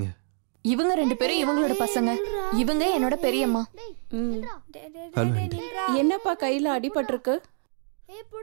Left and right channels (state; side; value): silent; left; 61 dB below the other